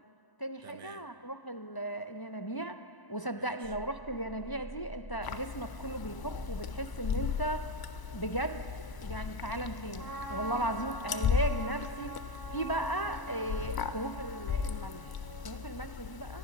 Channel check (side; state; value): right; late; 1.0 ms